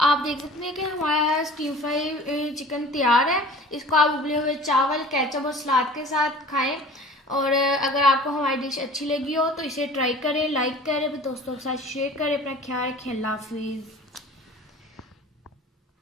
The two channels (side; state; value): both; normal; correlation 0.43